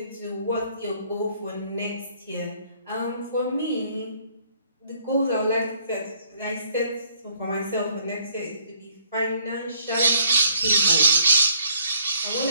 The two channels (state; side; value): inverted; both; correlation -0.63